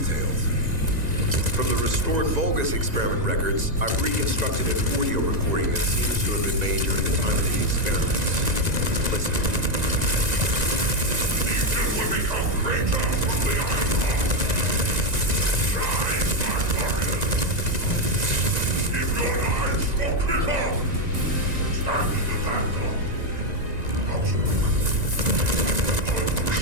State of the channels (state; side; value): late; left; 1.9 ms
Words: From the restored Vulgus experiment records, I've reconstructed an audio recording that seems to have been made during the time of the experiments. Listen. These will become greater from the Ironheart. Shine, my warriors. If your lives will kick off, stand in the vanguard. Outspoken. I will